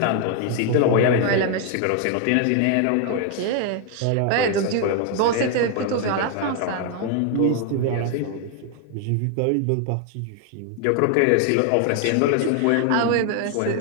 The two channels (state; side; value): different; both; correlation 0.00